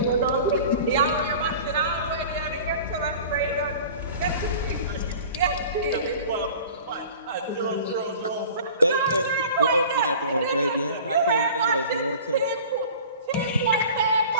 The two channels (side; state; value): both; inverted; correlation -0.42